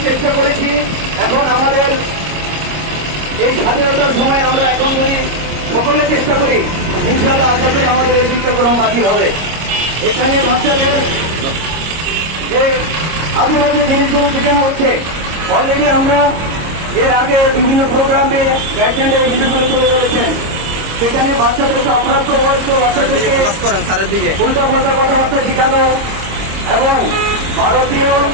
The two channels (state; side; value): late; left; 25 ms